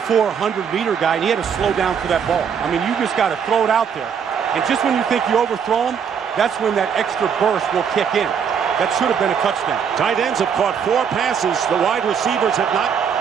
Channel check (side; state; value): left; quieter; 7.2 dB